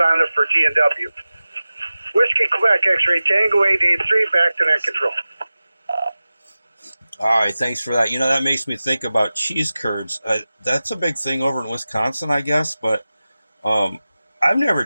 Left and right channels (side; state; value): both; inverted; correlation -0.96